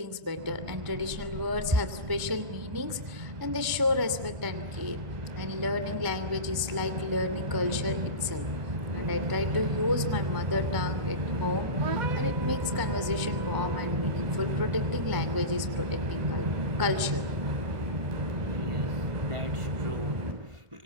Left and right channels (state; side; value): late; left; 1.0 ms